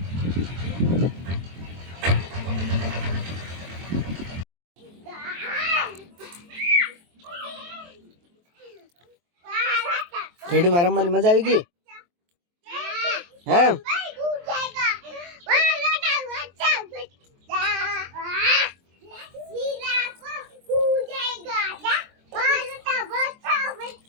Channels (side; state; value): left; late; 23 ms